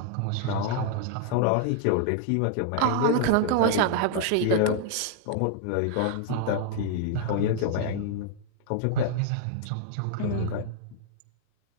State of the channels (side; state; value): both; different; correlation -0.01